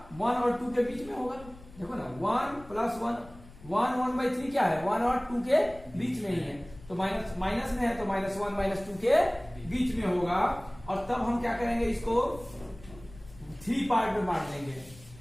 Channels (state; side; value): noise; left; rumble, 20 dB below the sound